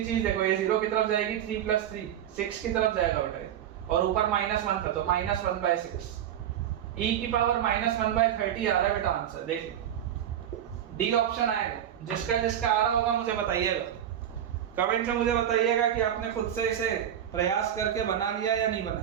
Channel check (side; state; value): left; quieter; 10.3 dB